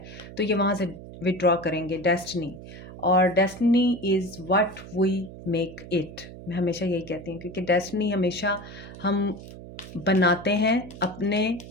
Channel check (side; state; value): right; noise; hum, 14 dB below the sound